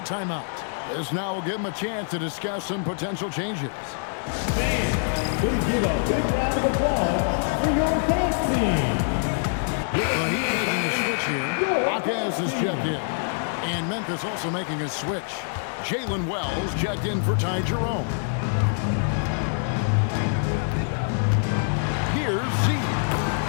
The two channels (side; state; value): right; silent; 62 dB below the other